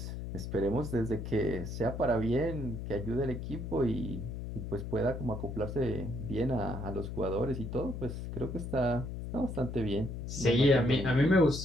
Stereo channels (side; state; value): left; noise; hum, 6 dB below the sound